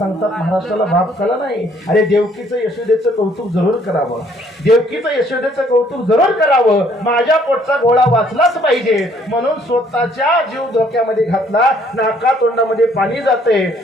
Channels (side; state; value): both; normal; correlation 0.63